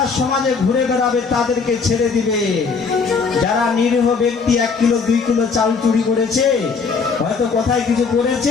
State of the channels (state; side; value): quieter; right; 5.1 dB